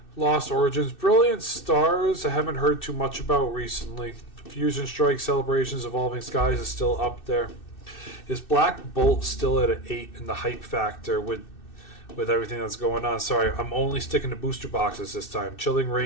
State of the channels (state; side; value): late; right; 2.6 ms